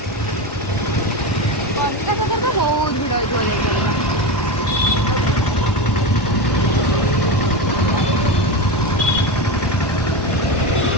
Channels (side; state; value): right; late; 1.2 ms